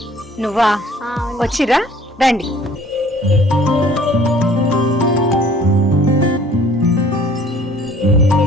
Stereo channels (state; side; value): normal; both; correlation 0.54